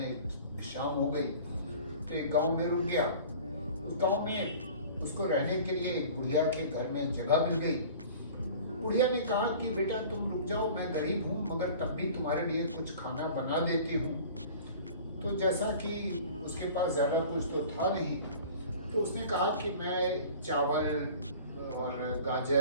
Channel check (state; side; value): inverted; both; correlation -0.44